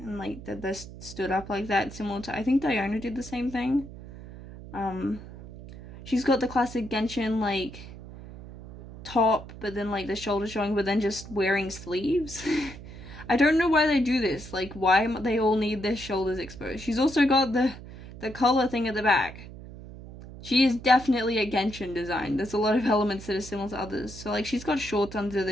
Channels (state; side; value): noise; right; hum, 14 dB below the sound